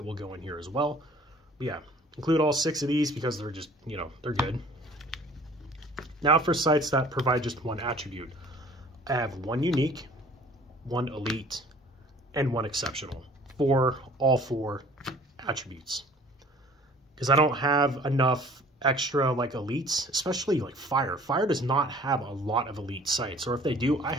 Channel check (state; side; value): normal; both; correlation 0.51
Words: will go in here as well. But yeah, include all 6 of these because they're just, you know, they're good. Now for sites that provide just one attribute. I have 1 unique, 1 elite, and 1 exceptional for all 4 attributes. Because I don't have enough extra like elites, especially like Fire. Fire does not have a lot of elite sites, or if they do, I